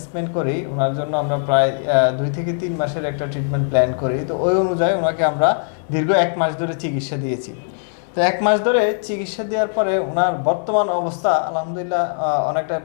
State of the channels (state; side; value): silent; right; digital silence